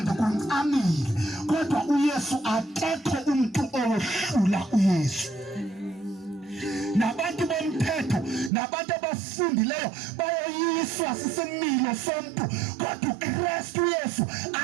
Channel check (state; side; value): drops out; left; at 8.5 s